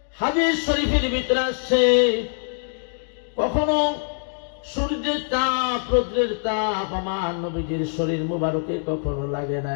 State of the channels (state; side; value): silent; right; digital silence